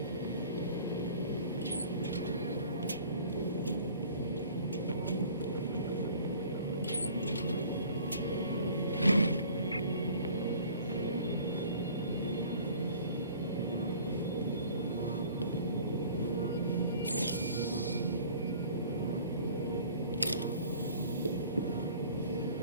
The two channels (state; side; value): inverted; both; correlation -0.49